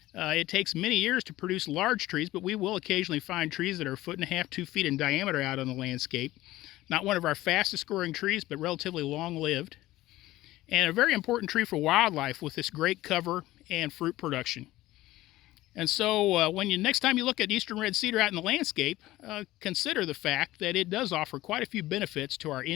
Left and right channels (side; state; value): right; quieter; 16.7 dB